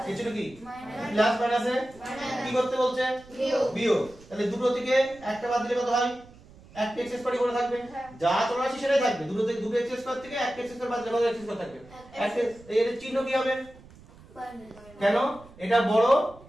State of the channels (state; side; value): noise; right; rumble, 23 dB below the sound